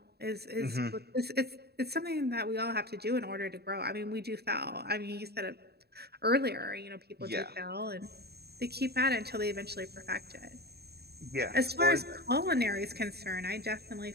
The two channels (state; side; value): late; left; 0.47 ms